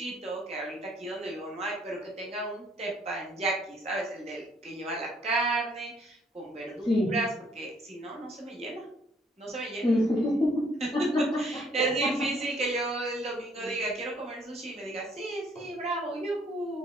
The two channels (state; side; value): normal; both; correlation 0.65